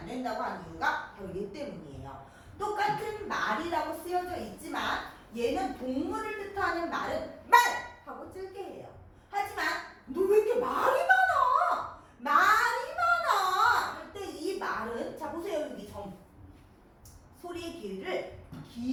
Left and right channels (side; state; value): both; identical; correlation 1.00